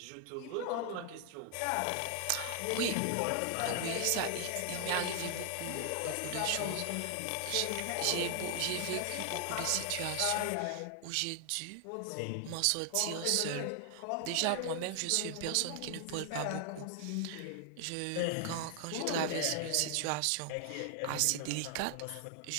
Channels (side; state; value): both; different; correlation 0.00